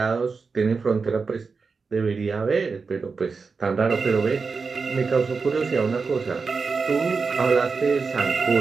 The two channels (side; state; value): left; quieter; 4.8 dB